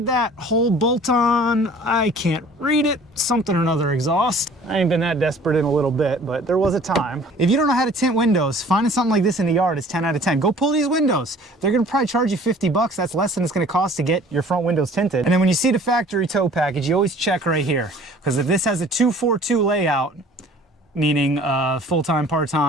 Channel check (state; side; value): normal; both; correlation 0.50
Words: that whole bolt-on. I can't read it. Something or another exhaust. I ain't been that desperate in a little bit, but there was a time. If you don't know how to tint windows, finding something like this in the yard is 10 out of 10. Go pull these windows. They're gonna probably charge you 50 bucks. That's less than it's gonna cost to get your front windows tinted. And then when you see the factory tow package, you always check right here. Because if this has a 242 layout, meaning full-time,